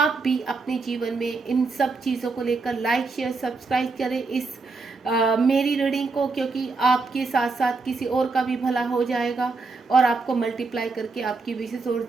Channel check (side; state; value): left; quieter; 4.0 dB